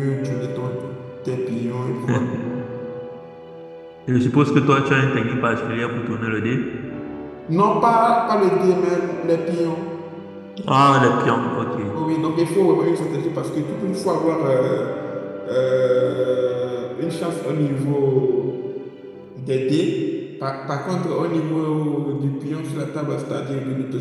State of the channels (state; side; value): identical; both; correlation 1.00